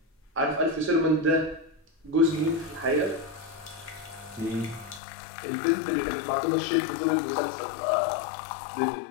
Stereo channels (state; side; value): drops out; right; at 5.0 s